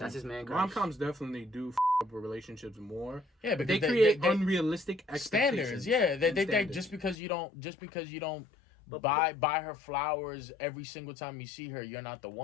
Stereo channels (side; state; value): right; drops out; at 7.2 s